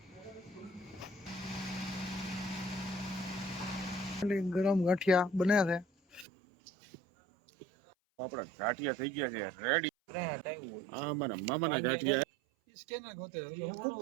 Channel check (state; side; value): drops out; left; at 6.2 s